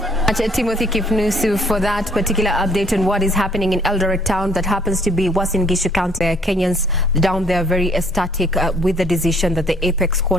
Timothy Kipnusu for that particular update on what is happening in Eldoret town that happens to be Uasin Gishu County. Kenyans down there very ecstatic with the decision that the Apex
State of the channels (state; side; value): normal; both; correlation 0.62